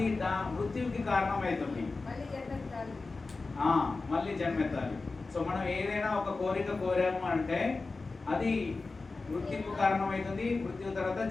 మృత్యువుకి కారణం అవుతుంది, మళ్ళీ జన్మెత్తాలి. సో మనం ఏదైనా ఒక కోరిక కోరాము అంటే అది మృత్యుకు కారణం అవుతుంది, మృత్యు తర్వాత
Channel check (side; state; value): right; quieter; 3.8 dB